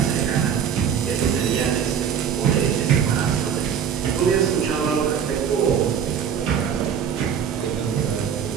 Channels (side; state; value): left; quieter; 7.8 dB